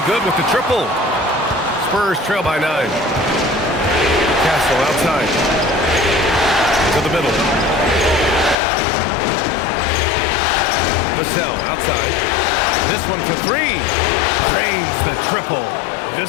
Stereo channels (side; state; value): right; drops out; at 8.6 s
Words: good with the triple. Spurs trail by 9. Castle outside. To the middle. Vassell outside. This one for 3. Drains the triple.